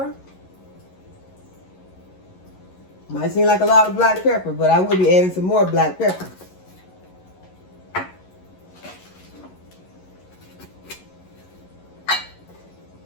Might seem like a lot of black pepper, but I will be adding some more black pepper.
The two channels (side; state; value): right; late; 11 ms